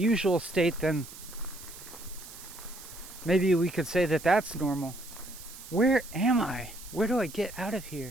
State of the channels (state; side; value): noise; right; hiss, 15 dB below the sound